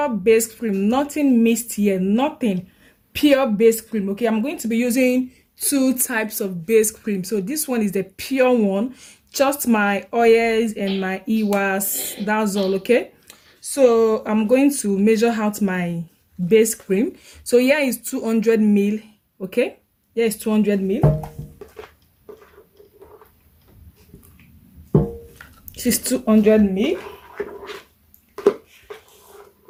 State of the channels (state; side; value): identical; both; correlation 1.00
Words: base cream, nothing mixed here, nothing. Pure base cream, okay? I'm going to be using two types of base cream. So this one is the pure one, just my oils and my EWAS, that's all, okay? So I'm going to measure out my base cream. So here is 200 ml, okay? Here is 200 ml. This is 200 ml.